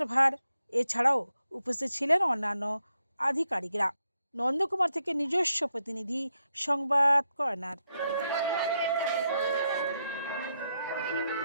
এছাড়াও উপস্থিত ছিলেন অন্যান্য আধিকারিকরা। নন্দকুমার থেকে নিজস্ব প্রতিনিধি সংবাদ কর্নার।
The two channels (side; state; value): both; inverted; correlation -0.82